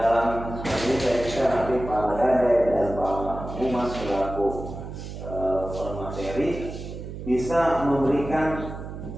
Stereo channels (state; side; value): noise; right; hum, 9 dB below the sound